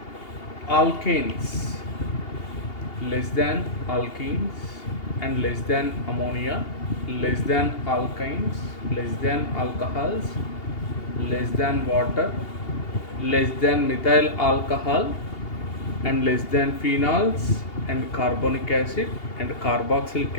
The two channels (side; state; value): right; late; 2.8 ms